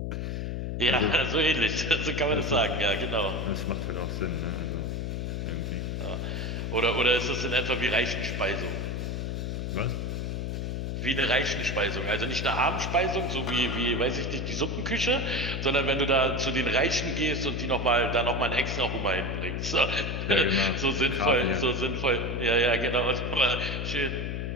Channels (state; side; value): noise; left; hum, 3 dB below the sound